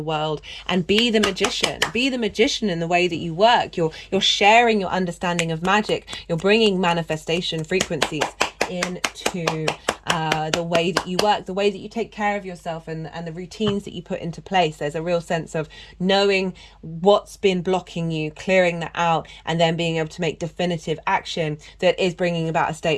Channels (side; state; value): both; identical; correlation 1.00